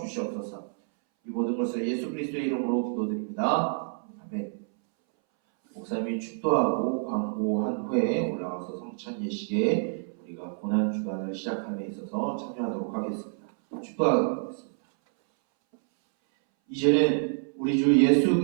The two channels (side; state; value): left; silent; 59 dB below the other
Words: 주시옵소서. 이 모든 것을 예수 그리스도의 이름으로 기도드립니다. 아멘. 목사님이 축도하고 광고한 후에 올라가서 성찬 예식에 우리가 고난 주간을 시작함에 있어서 참여하도록 하겠습니다. 축도하겠습니다. 이제는 우리 주 예수